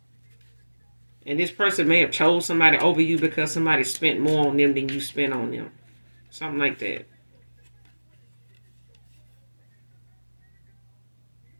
And this person may have chose somebody over you because somebody spent more on them than you spent on them. Something like that.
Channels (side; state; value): both; inverted; correlation -1.00